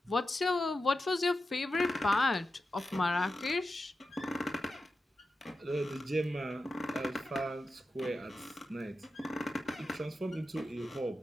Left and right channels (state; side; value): normal; both; correlation 0.91